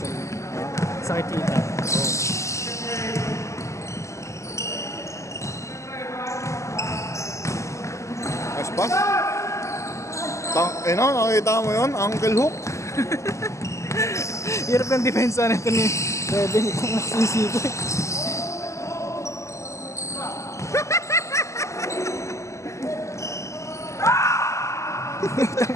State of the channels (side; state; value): right; late; 0.14 ms